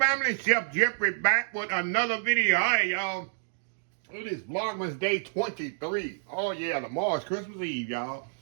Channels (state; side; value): silent; left; digital silence